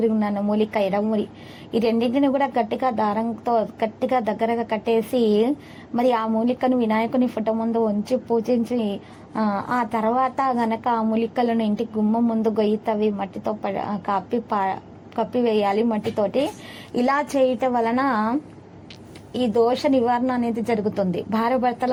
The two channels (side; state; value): both; identical; correlation 1.00